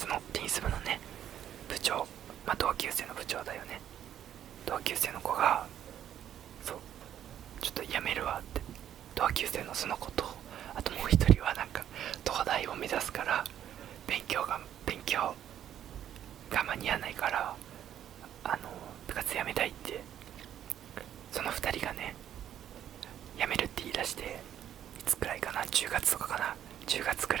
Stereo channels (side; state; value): left; quieter; 10.4 dB